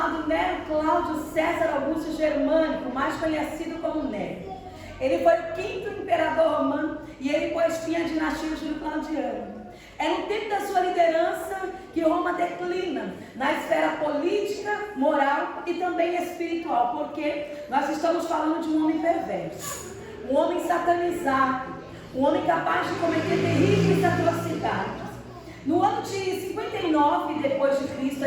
Nero Cláudio César Augusto Germânico, mais conhecido como Nero. Ele foi o 5º imperador romano e ele pôs fim à dinastia Júlio-Claudiana. É no tempo da sua liderança que Roma declina na esfera política, moral e também espiritual, porque nós estamos falando de um homem perverso, um homem satanizado, um homem capaz de cometer terríveis atrocidades. No ano de 59 depois de Cristo,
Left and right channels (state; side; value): identical; both; correlation 1.00